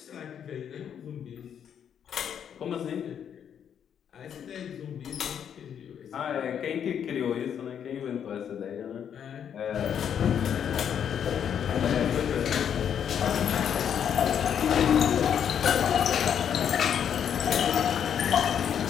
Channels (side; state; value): right; quieter; 8.5 dB